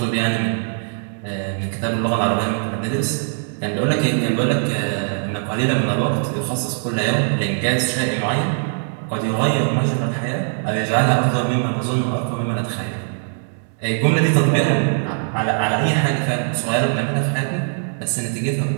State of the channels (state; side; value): silent; left; digital silence